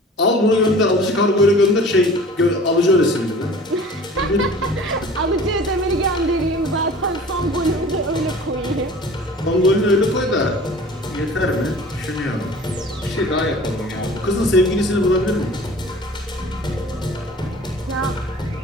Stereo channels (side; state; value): both; normal; correlation 0.44